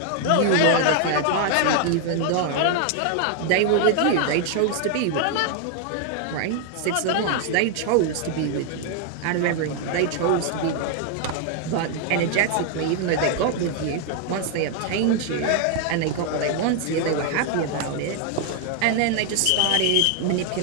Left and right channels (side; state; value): both; different; correlation 0.00